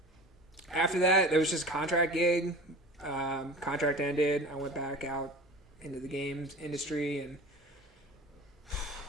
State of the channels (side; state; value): both; normal; correlation 0.38